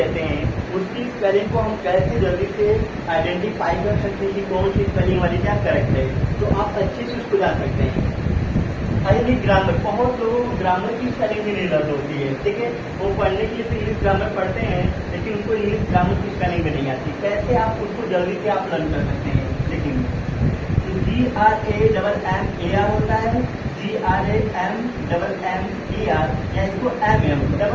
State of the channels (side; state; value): both; identical; correlation 1.00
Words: हैं उसकी स्पेलिंग को हम कैसे जल्दी से आइडेंटिफाई कर सकते हैं कि कौन सी स्पेलिंग वाली क्या करेक्ट है, तो आप अच्छे से उसको जान सकते हैं। हाईली ग्रामर, बहुत लोगों को ग्रामर की स्पेलिंग भी नहीं लर्न होती है। ठीक है, वो पढ़ने के लिए तो इंग्लिश ग्रामर पढ़ते हैं लेकिन उनको इंग्लिश ग्रामर की स्पेलिंग भी नहीं आती। कैसे आप उसको जल्दी से आप लर्न कर सकते हैं, देखेंगे GRAMMAR होता है, GRAMMER, या इसको MM,